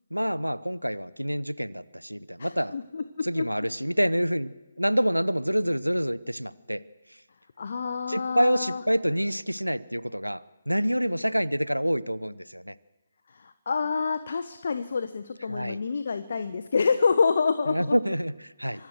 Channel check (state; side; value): inverted; both; correlation -0.95